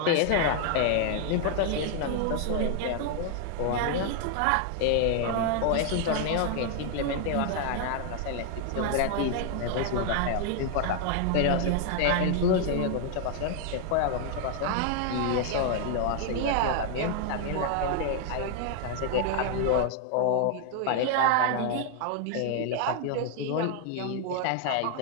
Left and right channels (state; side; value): different; both; correlation 0.00